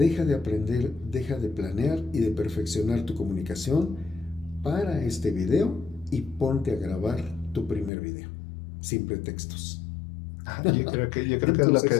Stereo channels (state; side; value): drops out; right; at 7.9 s